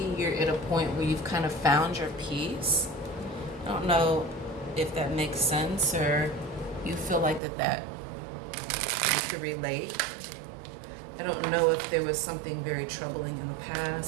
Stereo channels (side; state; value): left; drops out; at 7.4 s